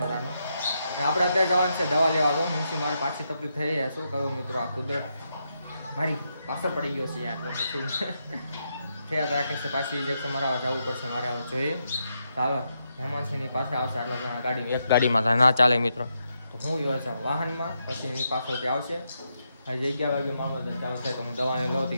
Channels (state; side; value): inverted; both; correlation -0.82